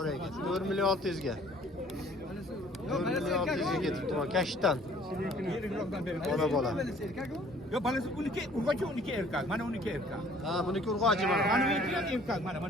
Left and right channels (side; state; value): both; normal; correlation 0.56